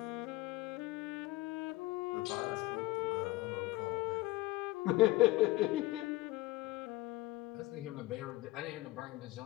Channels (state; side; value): quieter; right; 19.1 dB